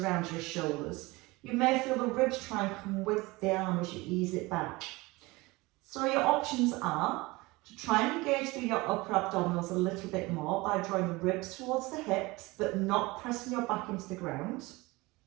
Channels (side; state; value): left; quieter; 22.5 dB